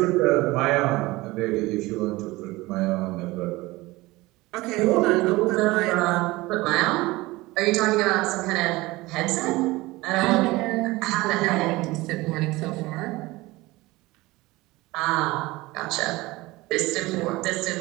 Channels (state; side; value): quieter; left; 20.5 dB